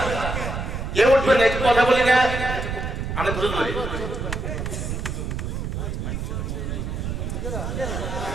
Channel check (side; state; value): right; noise; rumble, 4 dB below the sound